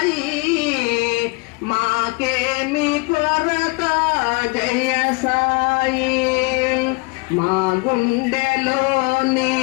మాకేమి కొరత జయ సాయి. మా గుండెలోని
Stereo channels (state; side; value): quieter; right; 27.8 dB